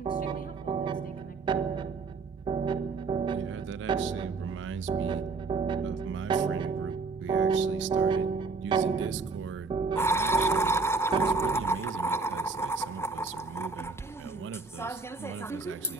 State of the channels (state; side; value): quieter; left; 4.2 dB